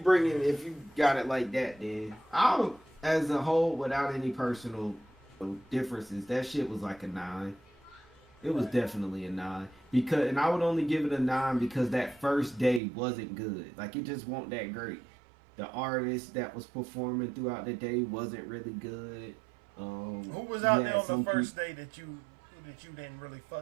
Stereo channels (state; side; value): drops out; left; at 12.8 s